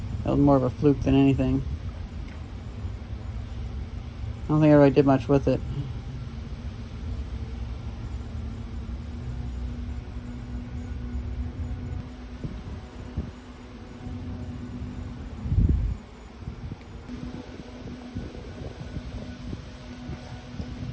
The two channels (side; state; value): both; identical; correlation 1.00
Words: that was more of a fluke than anything. I don't think I really did much with it.